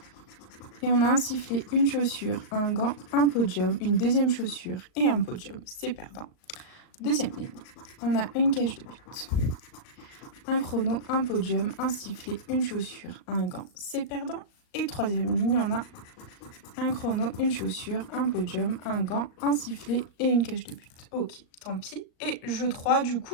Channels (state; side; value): late; right; 38 ms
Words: Et on a un sifflet, une chaussure, un gant, un podium, une deuxième chaussure et un podium. C'est perdant. Deuxième ligne, on a une cage de but, un chrono, un podium, un sifflet, une chaussure, un gant. C'est perdant. Et troisième ligne, on a un chrono, une chaussure, un podium, un gant, un sifflet et une cage de but. Ok, tant pis. Et jeu 3, du